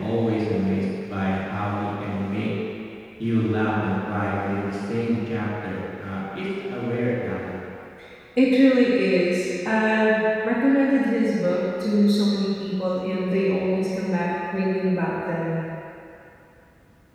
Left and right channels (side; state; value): both; identical; correlation 1.00